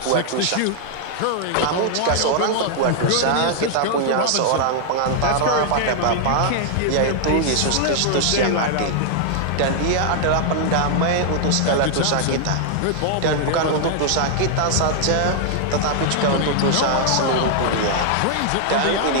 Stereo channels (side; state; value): both; different; correlation 0.00